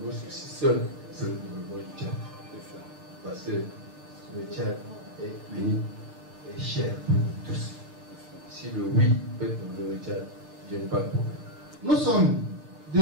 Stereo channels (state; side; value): late; right; 3.4 ms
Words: Moi, je suis seul, c'est le Tchad. Parce que le Tchad est uni et cher pour tous. Si le oui peut nous le Tchad, il n'y a pas de problème. Nous sommes